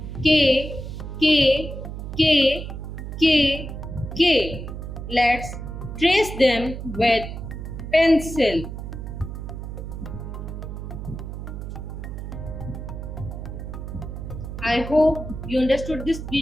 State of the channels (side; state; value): right; noise; hum, 8 dB below the sound